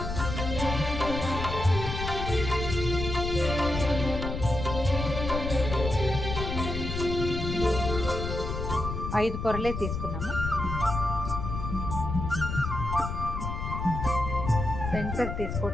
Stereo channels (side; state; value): left; noise; rumble, 4 dB below the sound